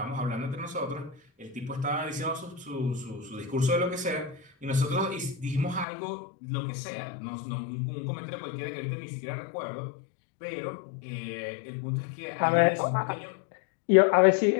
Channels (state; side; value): drops out; right; at 5.9 s